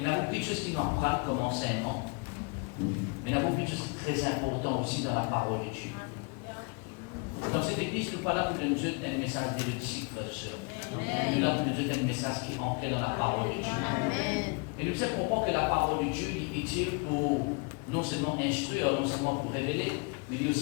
y a beaucoup de choses qui nous apprennent comme enseignement. Mais il y a beaucoup de choses très importantes aussi dans la parole de Dieu. Dans cette église, nous ne sommes pas là pour nous donner un message d'érudique, frères et sœurs. Nous sommes là pour nous donner un message qui est ancré dans la parole de Dieu. Et nous devons comprendre que la parole de Dieu est utile pour non seulement instruire, non seulement pour révéler, mais il est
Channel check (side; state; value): right; quieter; 32.3 dB